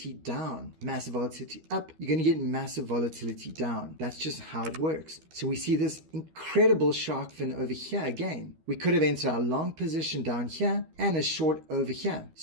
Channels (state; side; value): late; left; 12 ms